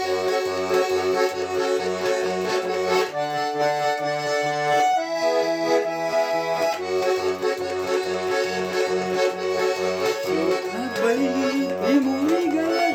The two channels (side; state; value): both; identical; correlation 1.00